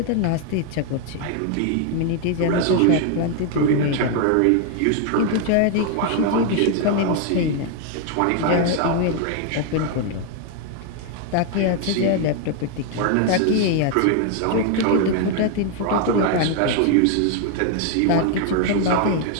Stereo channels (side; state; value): both; different; correlation 0.01